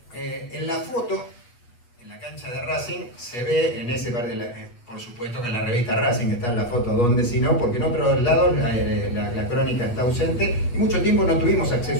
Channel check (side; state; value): right; late; 8.3 ms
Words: En la foto, en la cancha de Racing, se ve en ese par por supuesto que en la revista Racing está en la foto, donde si no, porque en otros lados la crónica está ausente y mucho tiempo no tuvimos